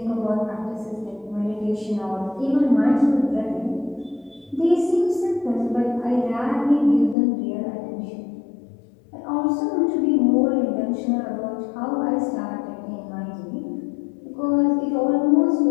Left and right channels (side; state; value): right; drops out; at 7.2 s